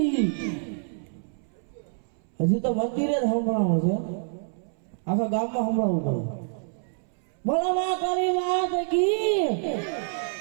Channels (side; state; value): left; silent; 60 dB below the other